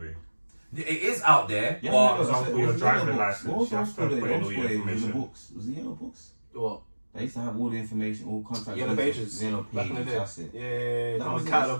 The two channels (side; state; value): both; inverted; correlation -1.00